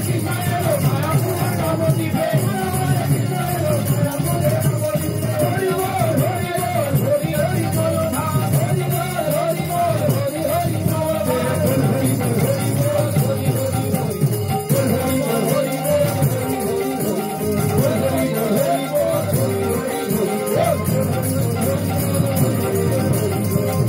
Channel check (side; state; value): both; identical; correlation 1.00